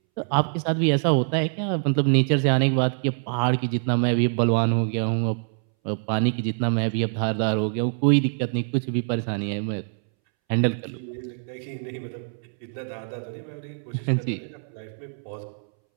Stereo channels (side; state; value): left; silent; 62 dB below the other